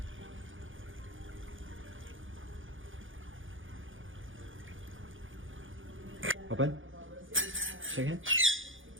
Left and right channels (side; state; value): left; late; 0.58 ms